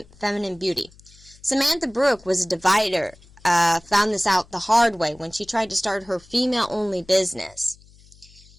feminine beauty. Samantha Brooke was a divider, found this out the hard way when she tried to start her female-only business.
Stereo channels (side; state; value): left; noise; hum, 26 dB below the sound